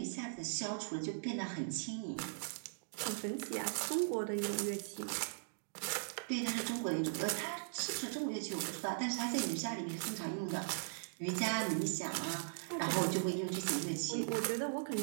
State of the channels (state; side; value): silent; left; digital silence